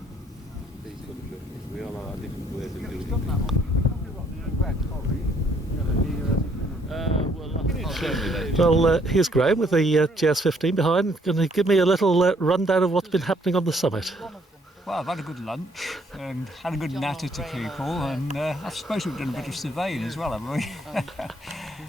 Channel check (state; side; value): normal; both; correlation 0.66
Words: Well, here's Graham with the GS15 behind. Going to give me a little rundown of what's been happening on the summit. Well, I've had a good lunch and had a good natter to people, and I suppose we've done a bit of surveying as well, haven't we?